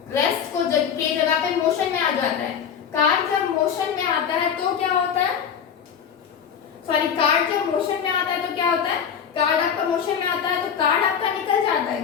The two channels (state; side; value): quieter; right; 7.8 dB